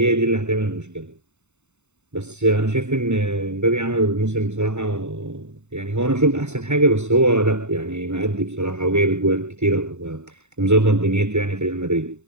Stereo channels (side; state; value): left; late; 0.82 ms